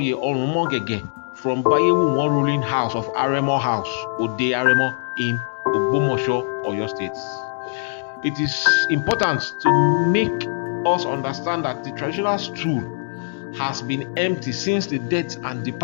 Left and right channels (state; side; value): silent; right; 64 dB below the other